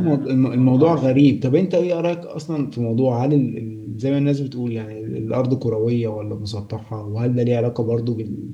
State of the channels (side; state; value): both; identical; correlation 1.00